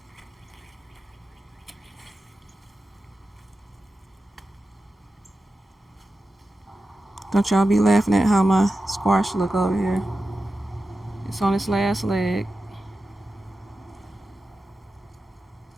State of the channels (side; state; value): both; normal; correlation 0.92